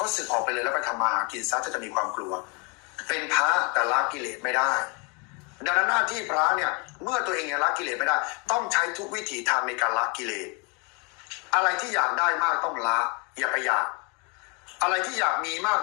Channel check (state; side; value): quieter; right; 32.7 dB